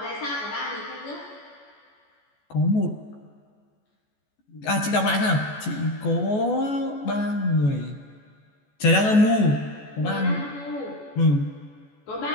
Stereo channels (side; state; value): right; late; 14 ms